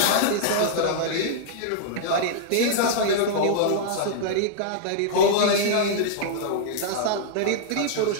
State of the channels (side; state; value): both; different; correlation -0.02